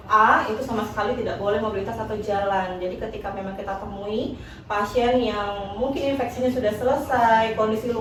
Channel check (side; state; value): both; identical; correlation 1.00